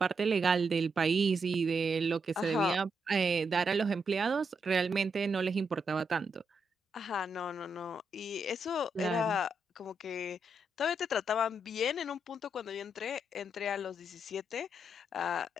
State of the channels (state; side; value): normal; both; correlation 0.81